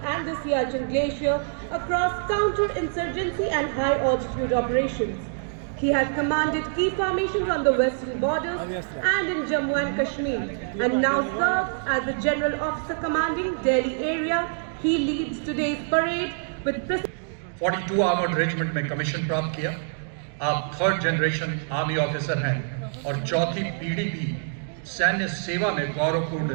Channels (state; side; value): silent; left; digital silence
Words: and the Siachen Glacier across counter-insurgency and high-altitude operations. He has commanded key formations on the western borders and in Jammu and Kashmir, and now serves as the General Officer commanding Delhi area. He leads today's parade with 42 armoured regiment में commission प्राप्त किया। आप third generation army officer हैं और चौथी पीढ़ी भी सैन्य सेवा में